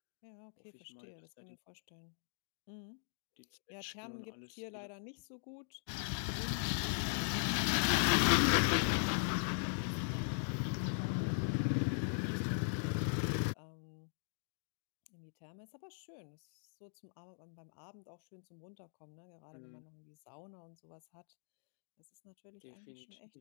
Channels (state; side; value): silent; right; digital silence